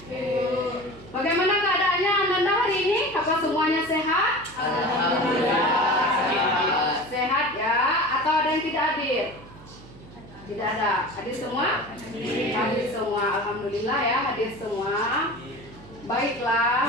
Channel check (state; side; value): noise; right; hum, 19 dB below the sound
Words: Bagaimana keadaannya Ananda hari ini? Apa semuanya sehat? Alhamdulillah. Sehat ya? Atau ada yang tidak hadir? Tidak ada. Hadir semua? Hadir semua. Alhamdulillah ya, hadir semua.